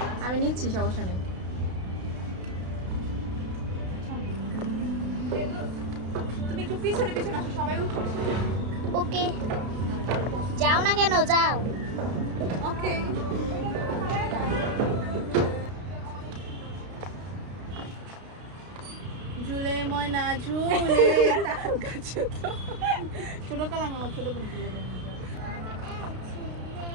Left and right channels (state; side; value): late; left; 32 ms